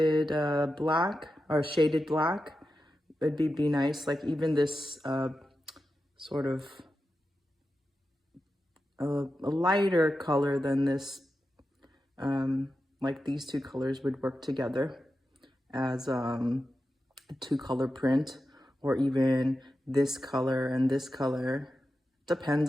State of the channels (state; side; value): normal; both; correlation 0.91